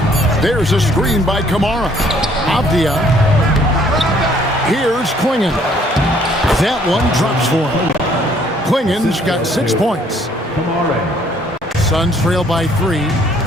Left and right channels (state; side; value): normal; both; correlation 0.62